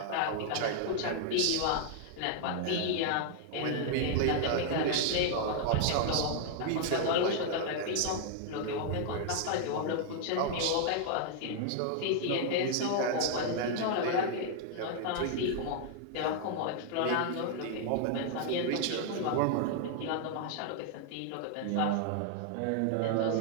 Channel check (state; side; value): different; both; correlation 0.00